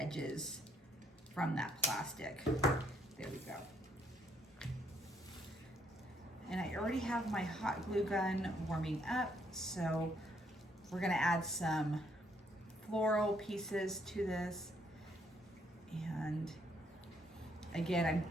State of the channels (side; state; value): both; normal; correlation 0.70